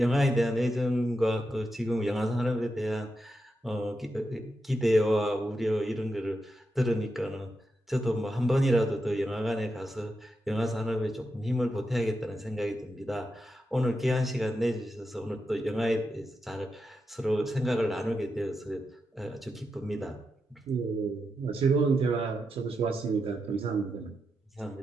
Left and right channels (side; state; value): both; normal; correlation 0.87